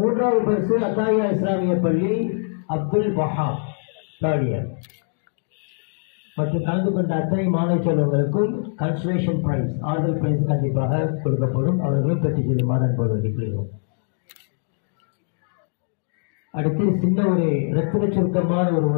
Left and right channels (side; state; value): right; silent; digital silence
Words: பரிசு அத்தாயா இஸ்லாமிய பள்ளி அப்துல் வஹாப் 3rd இயர். மற்றும் கலந்து கொண்ட அத்தனை மாணவ செல்வங்களுக்கும் கன்சலேஷன் பிரைஸ், ஆறுதல் பிரைஸ் கண்டிப்பாக கொடுக்கப்படும். அவர்களும் பெற்று செல்லுமாறு அன்போடு வேண்டிக்கொள்கிறோம். அடுத்து சின்ன ஒரு இரத்தின சுருக்கமான ஒரு